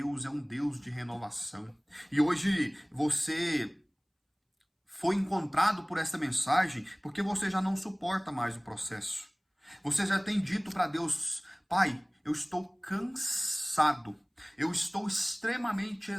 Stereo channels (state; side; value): identical; both; correlation 1.00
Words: é um Deus de renovação. E hoje você foi encontrado por essa mensagem porque você já não suporta mais o processo. Você já tem dito para Deus: Pai, eu estou cansado, eu estou extremamente